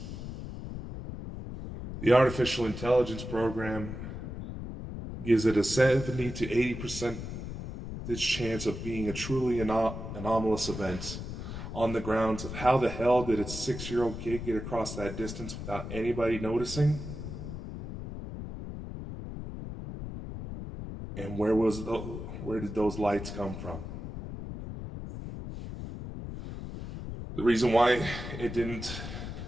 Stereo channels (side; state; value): left; noise; rumble, 8 dB below the sound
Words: The artificial intelligence program gives it a 70 to 80% chance of being a truly anomalous event, on the grounds of how the hell did a 6-year-old kid get across that distance without anybody noticing? And where did those lights come from? The reason why it didn't